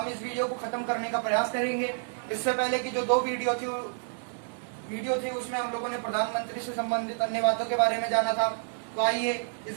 इस वीडियो को खत्म करने का प्रयास करेंगे। इससे पहले की जो दो वीडियो थी उसमें हम लोगों ने प्रधानमंत्री से संबंधित अन्य बातों के बारे में जाना था। तो आइए इस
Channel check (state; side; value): silent; left; digital silence